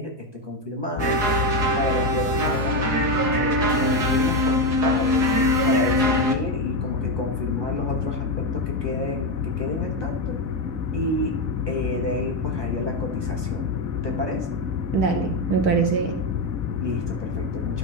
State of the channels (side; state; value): left; late; 4.8 ms